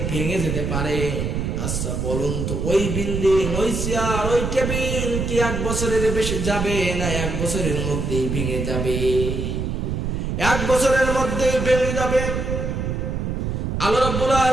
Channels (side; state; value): right; noise; rumble, 2 dB below the sound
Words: ভেঙে যেতে পারে, আচ্ছা বলুন তো ওই বিল্ডিং, ওই চেয়ার, ওই টেবিল কি 1 বছরের বেশি যাবে না 1 বছরের মধ্যেই ভেঙে যাবে? 1 বছরের মধ্যেই ভেঙে যাবে। আল্লাহ রাব্বুল